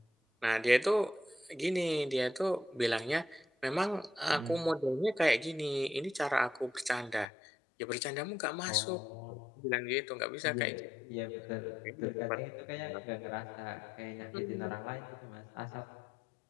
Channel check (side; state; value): right; drops out; at 7.2 s